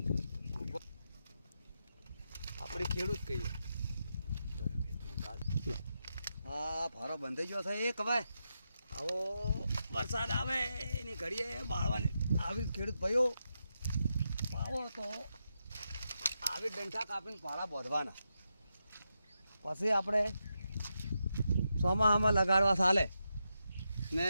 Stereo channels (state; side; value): inverted; both; correlation -0.86